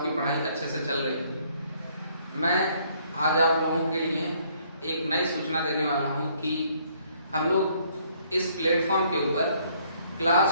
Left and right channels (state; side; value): inverted; both; correlation -0.65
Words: की पढ़ाई अच्छे से चल रही होगी। मैं आज आप लोगों के लिए एक नई सूचना देने वाला हूं कि हम लोग इस प्लेटफॉर्म के ऊपर